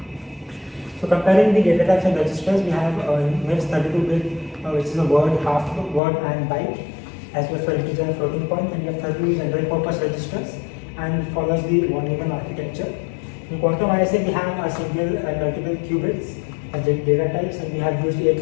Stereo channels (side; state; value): right; drops out; at 6.0 s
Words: So comparing the data types and registers, we have MIPS 32-bit, which is a word, half word and byte, as well for integer and floating point, and we have 32 general purpose registers, and follows the von Neumann architecture. In quantum ISA, we have a single and multiple qubits as data types, and we have used 8